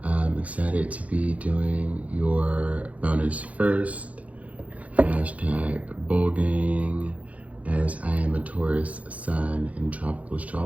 I'm excited to be doing your bonus first. Hashtag Bulgang, as I am a Taurus Sun in tropical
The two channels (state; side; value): late; left; 0.068 ms